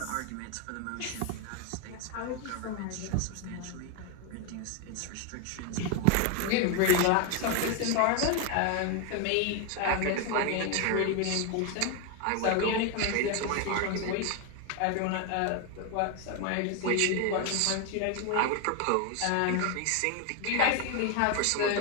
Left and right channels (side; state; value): both; different; correlation 0.01